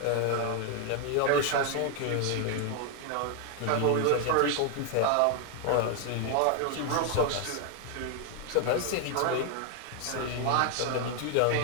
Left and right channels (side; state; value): both; different; correlation 0.00